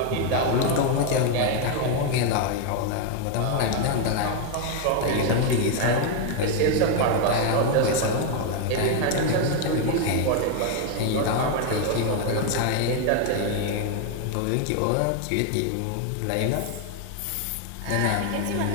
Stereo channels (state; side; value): different; both; correlation 0.01